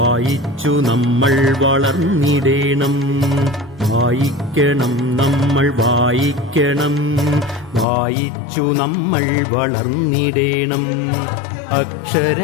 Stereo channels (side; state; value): right; drops out; at 7.9 s